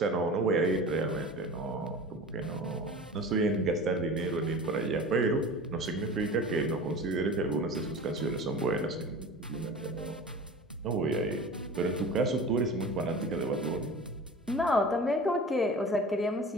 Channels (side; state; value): both; normal; correlation 0.36